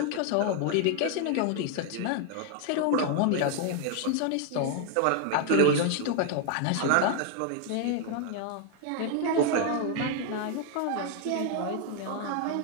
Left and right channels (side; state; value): both; different; correlation 0.00